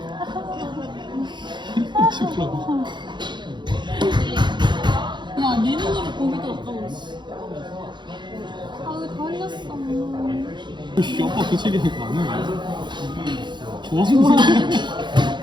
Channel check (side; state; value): left; late; 0.22 ms